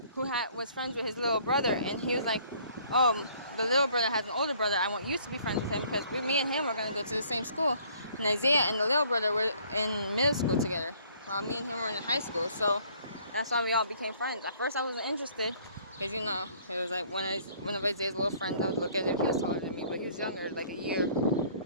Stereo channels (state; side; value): inverted; both; correlation -0.59